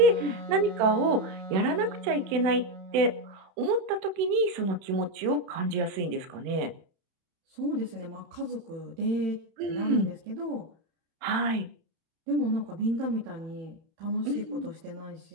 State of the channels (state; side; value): late; left; 31 ms